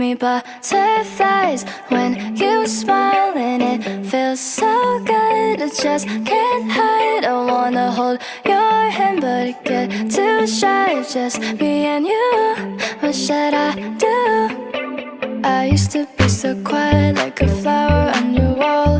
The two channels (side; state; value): both; identical; correlation 1.00